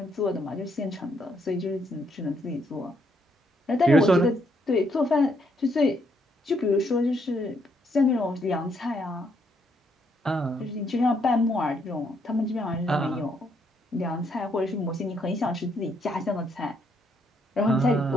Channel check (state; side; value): normal; both; correlation 0.73